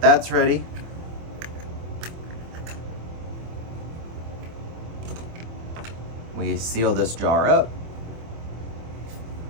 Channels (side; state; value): left; late; 25 ms